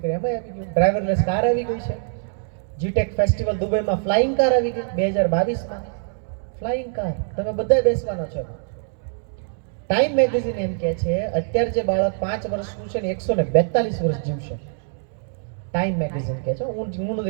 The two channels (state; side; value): silent; left; 63 dB below the other